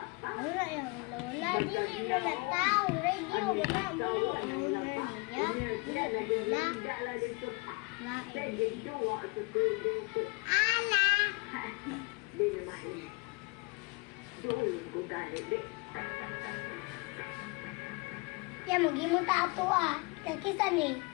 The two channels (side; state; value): right; quieter; 28.3 dB